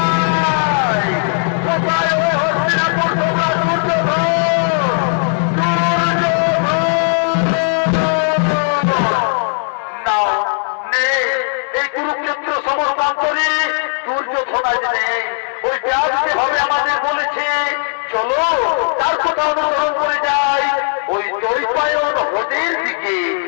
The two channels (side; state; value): right; silent; 58 dB below the other